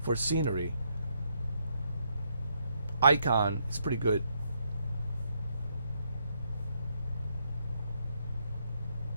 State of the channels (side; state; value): both; inverted; correlation -0.76